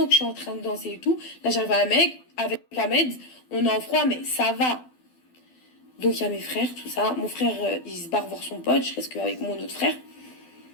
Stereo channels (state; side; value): late; right; 12 ms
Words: que je suis en train de danser et tout, là, j'arrive avec Ahmed. On est en froid, mais ça va. Donc, il y a mes frères, tout ça. Mon frère, il se barre voir son pote. Je reste qu'avec mon autre frère.